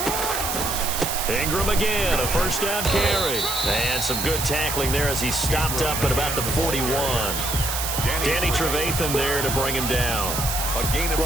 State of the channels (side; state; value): right; noise; hiss, 2 dB below the sound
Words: Ingram again, a first down carry. And some good tackling there as he stopped up at about the 41. Danny Trevathan there to bring him down.